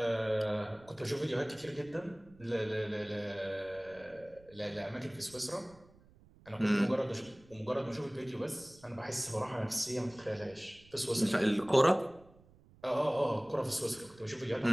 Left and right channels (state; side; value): noise; right; rumble, 25 dB below the sound